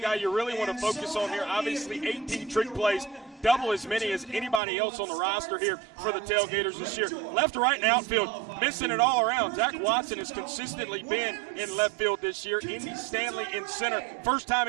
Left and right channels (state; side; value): drops out; left; at 4.6 s